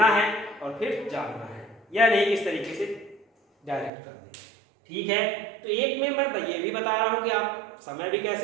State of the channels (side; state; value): left; drops out; at 3.9 s